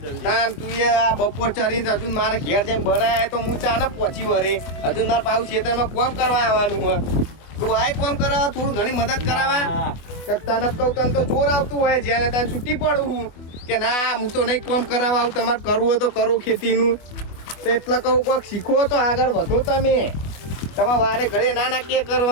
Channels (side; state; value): right; late; 24 ms